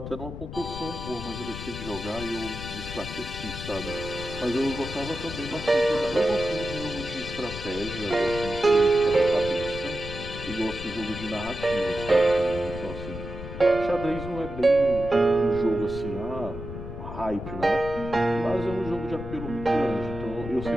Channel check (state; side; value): noise; left; rumble, 9 dB below the sound